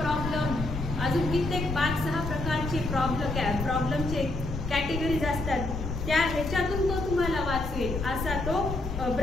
प्रॉब्लेम, अजून कित्येक 5-6 प्रकारचे प्रॉब्लेमचे कॅटेगरीज असतात. त्या ह्याच्यातून तो तुम्हाला वाचवेल असा तो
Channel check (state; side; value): noise; left; rumble, 5 dB below the sound